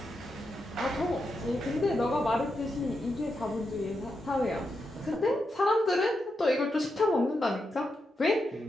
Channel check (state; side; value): normal; both; correlation 0.85